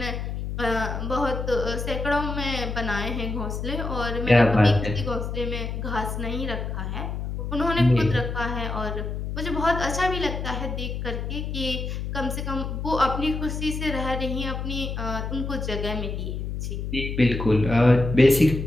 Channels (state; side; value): noise; left; hum, 4 dB below the sound